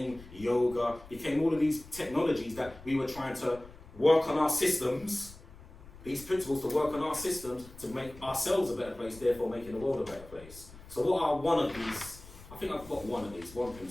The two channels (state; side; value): noise; left; rumble, 19 dB below the sound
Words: yoga, became all of these technologies that we were trying to work on our systems, these principles to work on our systems to make ourselves a better place, therefore making the world a better place. So what are one of these? I think I've got one of these, one